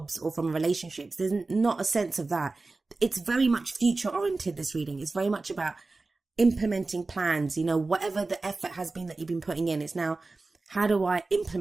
or from relationships. There's not a sense of that. It's very much future oriented, this reading. It's very much about implementing plans, whatever the effort has been that you've been putting in. It's now, how do I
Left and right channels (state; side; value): quieter; left; 3.5 dB